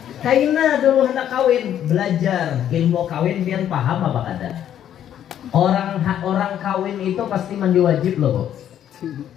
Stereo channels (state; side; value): quieter; right; 10.4 dB